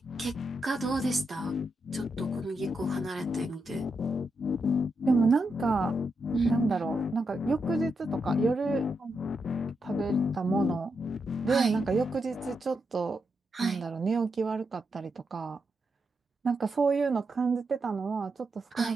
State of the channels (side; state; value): both; normal; correlation 0.84